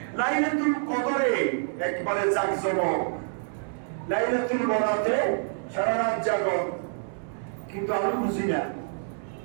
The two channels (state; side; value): silent; left; digital silence